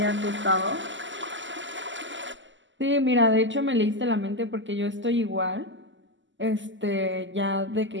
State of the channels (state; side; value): late; left; 0.54 ms